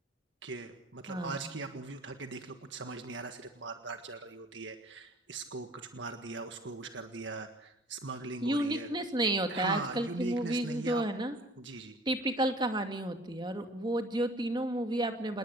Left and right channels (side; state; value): both; normal; correlation 0.50